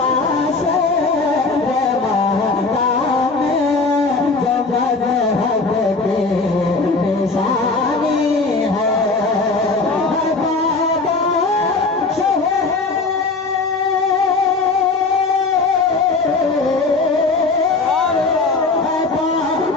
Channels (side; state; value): right; quieter; 3.8 dB